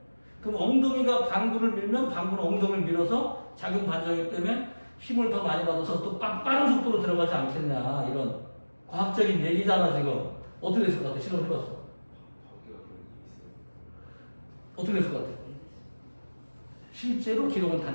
그럼 엉덩이가 방구를 밀면 방구는 엉덩이를 밀어서 작용 반작용 때문에 힘을 더 많이 받아서 또 빠른 속도로 들어가지 않겠냐 이런 과학적인 얘기잖아 지금. 어떻게 됐을 것 같아? 실험해봤어. 어떻게 됐을 것 같아? 실제로 기록은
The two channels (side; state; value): both; inverted; correlation -1.00